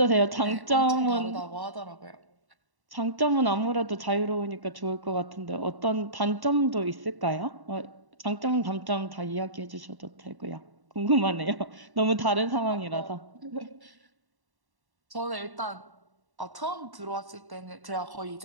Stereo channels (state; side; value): late; left; 1.1 ms